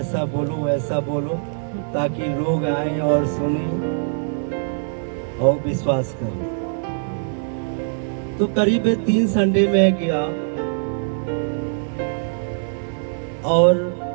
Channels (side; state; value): left; silent; 64 dB below the other